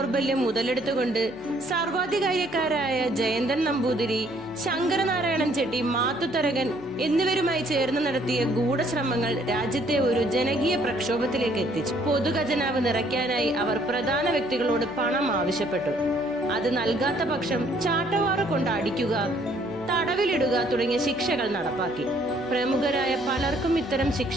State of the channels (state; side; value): noise; left; hum, 26 dB below the sound